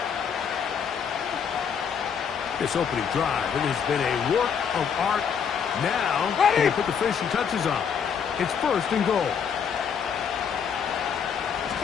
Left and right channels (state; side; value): quieter; right; 7.2 dB